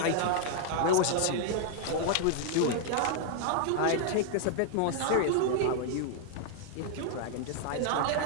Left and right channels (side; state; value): both; different; correlation 0.00